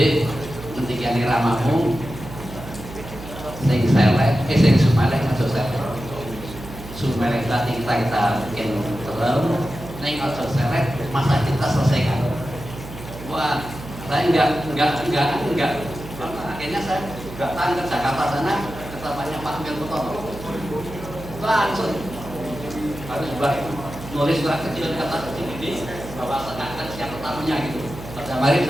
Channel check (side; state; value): right; noise; hum, 13 dB below the sound